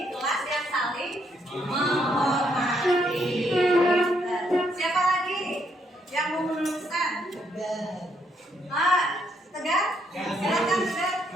kelas yang saling menghormati. Siapa lagi yang mau meneruskan? Tegar? Silakan Tegar.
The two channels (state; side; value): normal; both; correlation 0.73